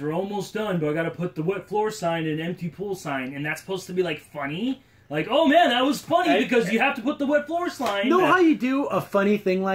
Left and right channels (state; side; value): identical; both; correlation 1.00